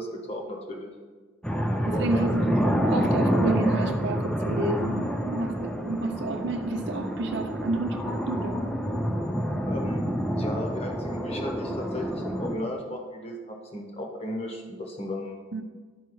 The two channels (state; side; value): normal; both; correlation 0.75